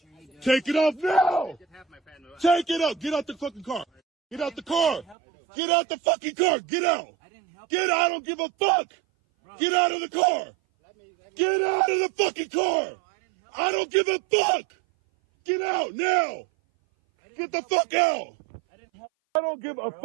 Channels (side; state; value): left; drops out; at 5.2 s